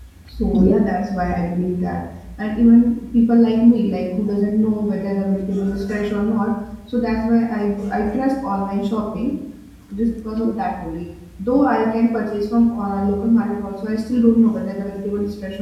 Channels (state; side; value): identical; both; correlation 1.00